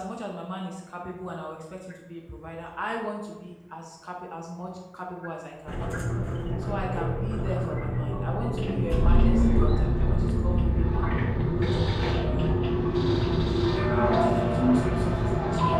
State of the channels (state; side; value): identical; both; correlation 1.00